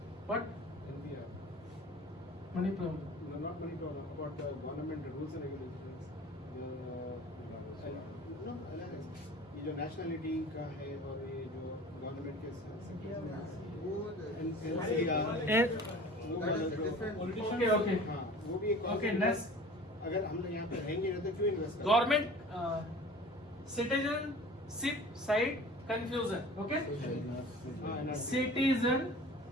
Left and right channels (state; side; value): normal; both; correlation 0.42